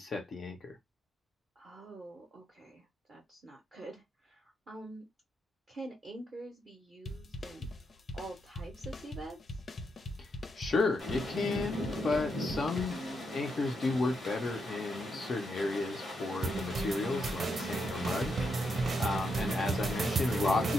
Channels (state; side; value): normal; both; correlation 0.81